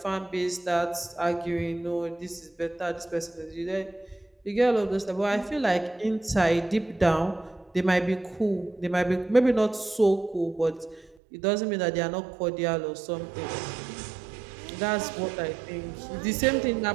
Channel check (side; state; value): left; drops out; at 11.2 s